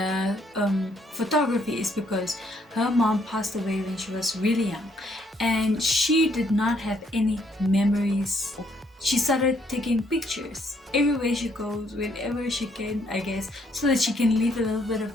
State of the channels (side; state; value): both; normal; correlation 0.69